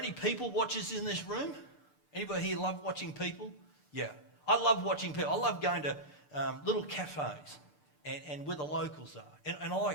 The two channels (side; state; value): right; late; 6.8 ms